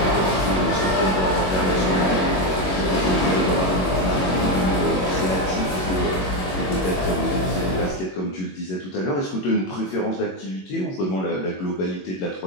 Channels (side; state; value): right; late; 21 ms